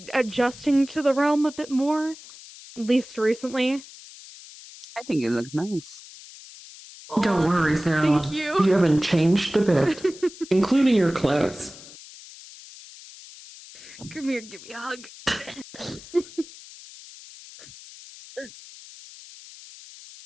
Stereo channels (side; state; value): left; noise; hiss, 18 dB below the sound